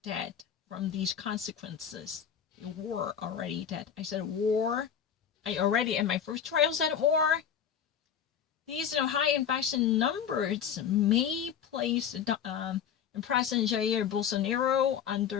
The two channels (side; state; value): right; quieter; 8.3 dB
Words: dead from these consequences. They were already dead. I said war. I already, in my first trial, said war. These high infection numbers may place President Jair Bolsonaro